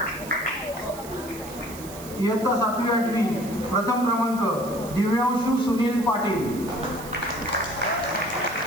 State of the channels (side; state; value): right; noise; hiss, 15 dB below the sound